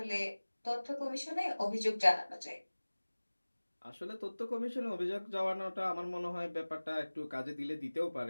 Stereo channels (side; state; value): both; inverted; correlation -1.00